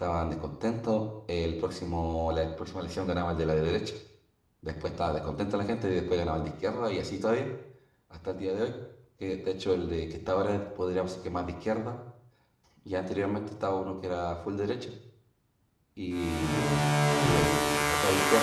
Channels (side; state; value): both; identical; correlation 1.00